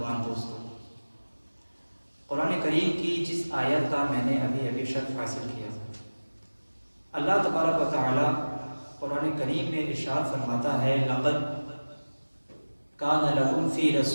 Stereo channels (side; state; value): both; inverted; correlation -1.00